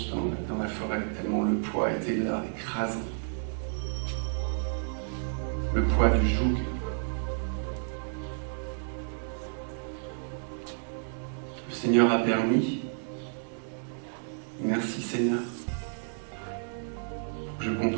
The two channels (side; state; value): left; silent; digital silence